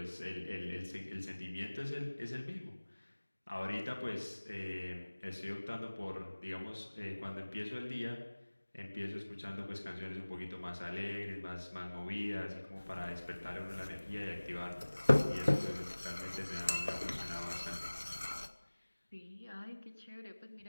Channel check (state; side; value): inverted; both; correlation -1.00